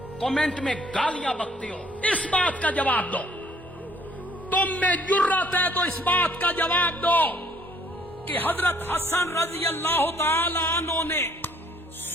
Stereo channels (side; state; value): both; normal; correlation 0.61